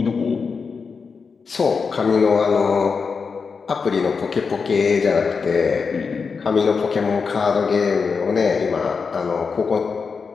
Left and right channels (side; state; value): right; quieter; 5.3 dB